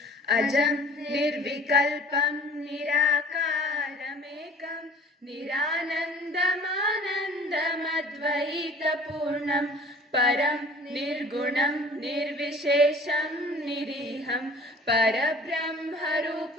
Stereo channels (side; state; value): both; normal; correlation 0.48